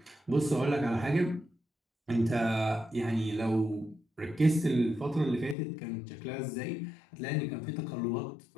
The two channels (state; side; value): drops out; right; at 5.6 s